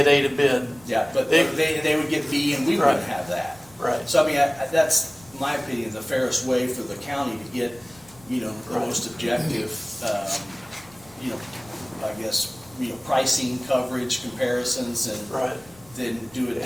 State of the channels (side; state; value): left; noise; rumble, 26 dB below the sound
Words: A to bid. Yeah, but they would get B, and we wouldn't Right. have that. Right. So, I mean, that's, in my opinion, the fairest way for the county to get, you know, the Right. most objective, you know, I guess, you know, pricing, coverage, comparisons, and Right. then do it. It